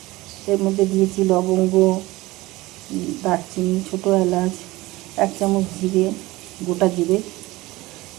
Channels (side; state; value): left; quieter; 19.9 dB